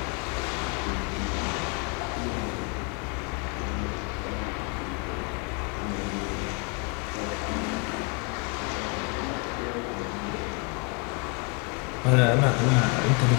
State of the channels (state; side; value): quieter; right; 33.2 dB